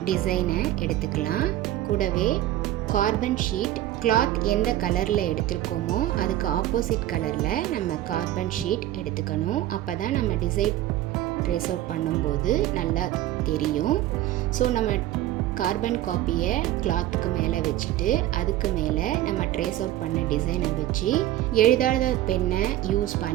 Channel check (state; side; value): quieter; left; 14.0 dB